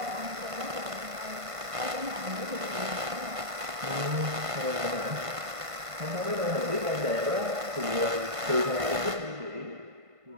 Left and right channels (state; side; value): late; left; 1.5 ms